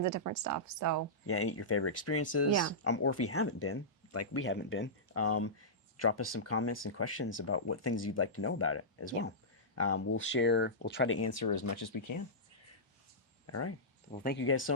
of different stuff. So yeah, your favorite experiences. Yeah. Or if you haven't been, like we haven't been, drop us some comments and questions about what things you'd like to know about it as well. We'll try to answer as much as we can. All right. Well, thank you guys so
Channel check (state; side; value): normal; both; correlation -0.14